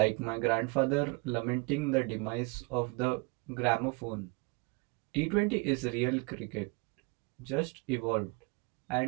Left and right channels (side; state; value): left; quieter; 29.1 dB